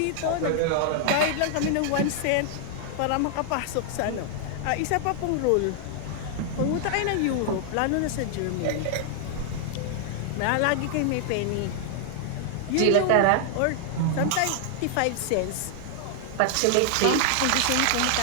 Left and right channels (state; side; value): different; both; correlation 0.00